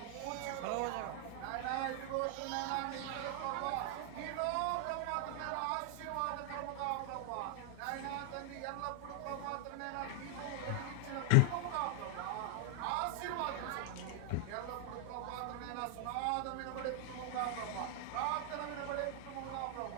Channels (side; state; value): both; different; correlation 0.00